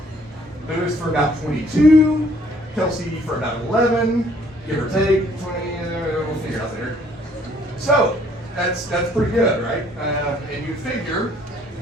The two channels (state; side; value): normal; both; correlation 0.62